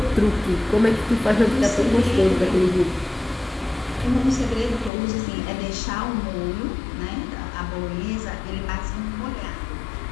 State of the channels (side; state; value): right; drops out; at 4.9 s